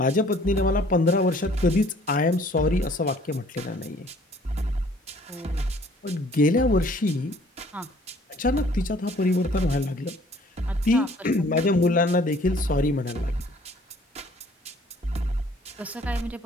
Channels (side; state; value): both; normal; correlation 0.56